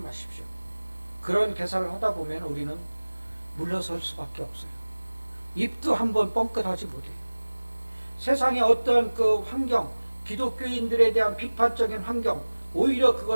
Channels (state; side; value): inverted; both; correlation -1.00